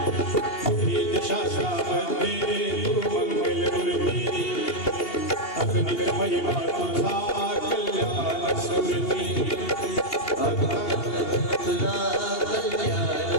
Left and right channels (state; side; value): late; right; 2.8 ms